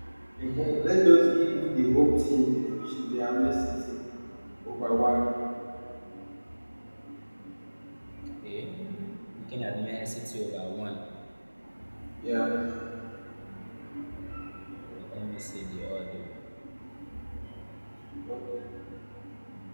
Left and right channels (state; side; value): inverted; both; correlation -1.00